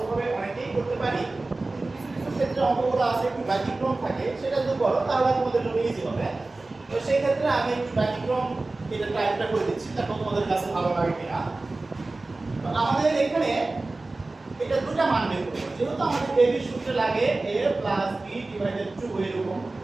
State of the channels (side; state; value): left; quieter; 3.2 dB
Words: অনেকেই করতে পারি, কিছু কিছু ক্ষেত্রে অঙ্কগুলো আছে একটু ব্যতিক্রম থাকে, সেটা যদি করো তাহলে তোমাদের জন্য ইজি হবে। তো সেই ক্ষেত্রে আমি একটু ব্যতিক্রম এটা টাইপটা করে দিচ্ছি, দেখো তোমাদের কাছে ভালো লাগে কিনা। তো আমাদের এখানে এটা দুটো মান বের করব, যেহেতু আমাদের a b সূত্র লাগে a প্লাস b ডিভাইডেড 2 এরকম,